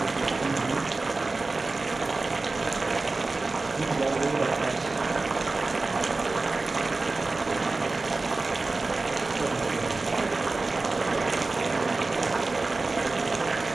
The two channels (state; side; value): quieter; left; 3.5 dB